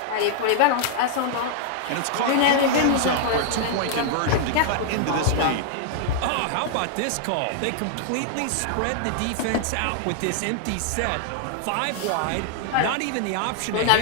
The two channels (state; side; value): different; both; correlation -0.01